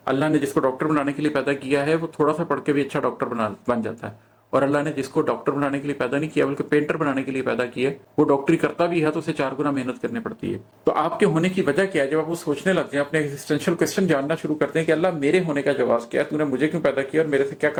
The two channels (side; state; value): both; identical; correlation 1.00